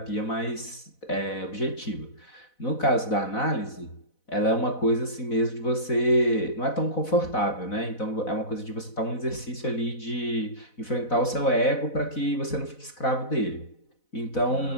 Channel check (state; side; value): late; right; 4.0 ms